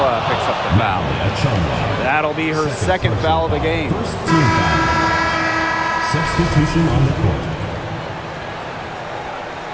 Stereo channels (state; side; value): identical; both; correlation 1.00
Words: picks up the foul. That'll be her second foul of the game. First team foul. Substitution on the court.